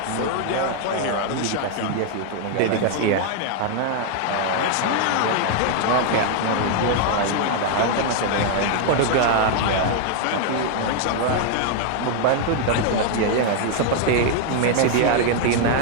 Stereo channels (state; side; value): different; both; correlation 0.00